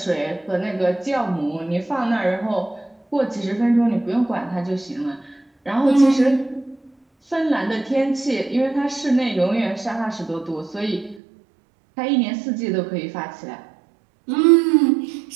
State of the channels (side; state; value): left; drops out; at 11.2 s